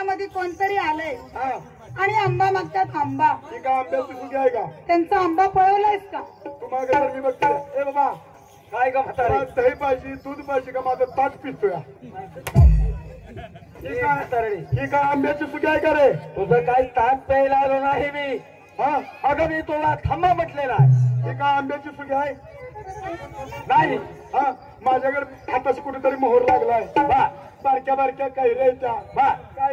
कोणतरी आलंय हा, आणि आंबा मागतात आंबा. ही का आंब्याची सुगी आहे का? त्यांचा आंबा पळवलायस का? तू मागे तर मी बघते. ए बाबा, काय का म्हातारे? मला दही पाहिजे, दूध पाहिजे का? माझं ताट पितोय. ही काय आंब्याची सुगी आहे का रे? तुझं काही ताण प्यायला आलो नाही मी. हा, अगं मी तुला थांबा म्हटलेला आहे. ही काय आंब्याची सुगी आहे? नाही हा, माझ्याकडे आताच कुठेतरी मोहर लागलाय. बा बारक्या बारक्या कैऱ्याच्या, बा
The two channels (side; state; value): both; identical; correlation 1.00